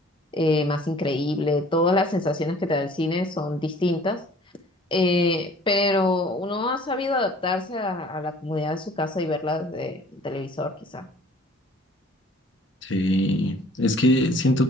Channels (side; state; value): both; normal; correlation 0.52